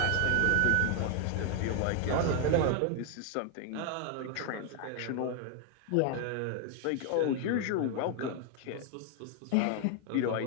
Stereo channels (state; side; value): different; both; correlation 0.00